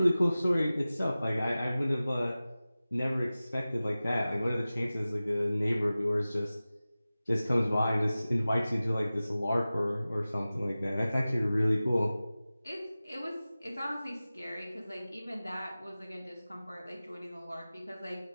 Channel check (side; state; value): both; inverted; correlation -0.97